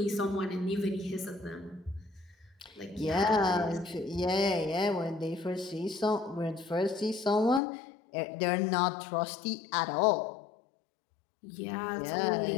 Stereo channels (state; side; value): drops out; right; at 7.6 s